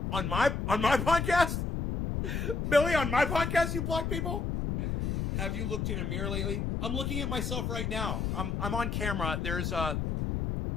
On my podcast? Billy, on my podcast you block people? Have you looked in a mirror lately? I'm looking at myself right now. I'm on camera. There's an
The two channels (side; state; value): left; noise; rumble, 1 dB below the sound